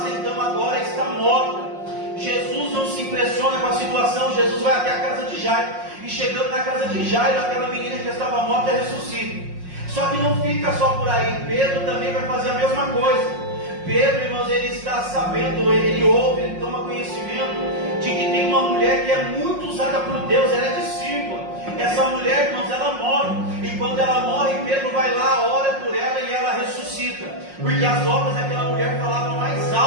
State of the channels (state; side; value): late; left; 5.5 ms